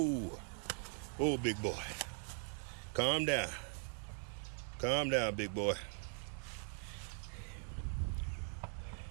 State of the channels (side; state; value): left; silent; 50 dB below the other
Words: Whoa, big boy. Calm down. Calm down, big boy.